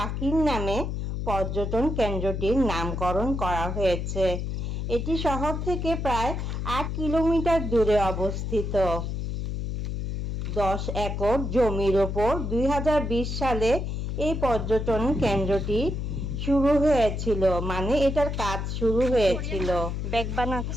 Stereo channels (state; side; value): noise; left; hum, 3 dB below the sound